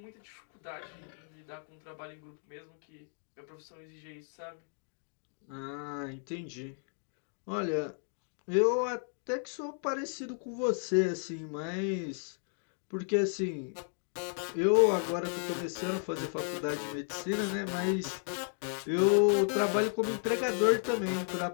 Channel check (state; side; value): silent; right; 55 dB below the other